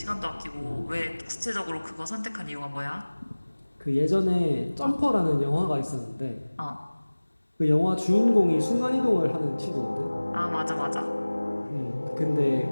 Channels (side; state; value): both; inverted; correlation -1.00